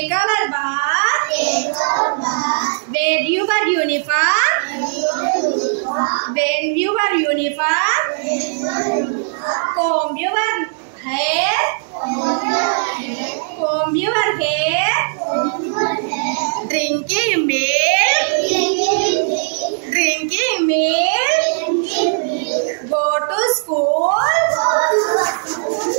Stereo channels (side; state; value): left; silent; digital silence